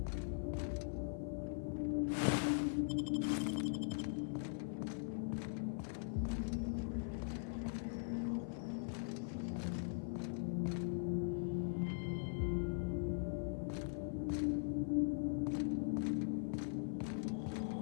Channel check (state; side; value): silent; right; 50 dB below the other